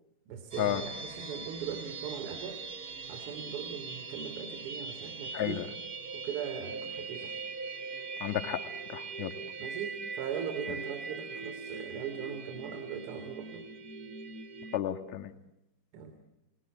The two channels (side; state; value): left; late; 4.5 ms